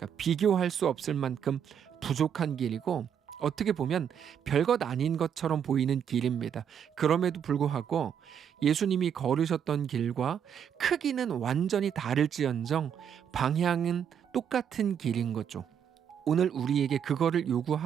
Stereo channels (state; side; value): quieter; left; 8.4 dB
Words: 비교할 수 없을 만큼 부족한 길이고 어떻게 보면 별것 아닌 것처럼 보이는 길입니다. 그럼에도 불구하고 예수님이 걸으셨던 길과 크기는 완전히 다를지언정 방향은 똑같은 길인 거죠. 오늘 우리에게 그거를